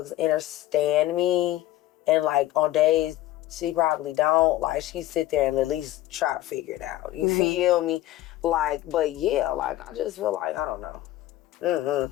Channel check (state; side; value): quieter; right; 15.1 dB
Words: understand me, and like on days she probably don't, like she sit there and at least try to figure it out. You feel me? Like, but yeah, like I just feel like I don't know.